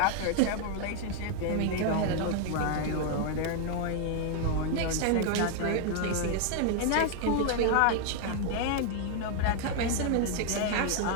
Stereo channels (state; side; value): different; both; correlation 0.00